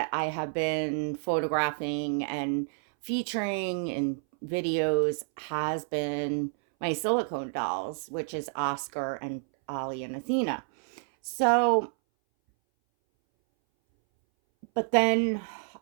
I have been photographing and featuring in videos has been my silicone dolls, which is Oscar and Ollie and Athena. So, but then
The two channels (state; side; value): silent; left; 59 dB below the other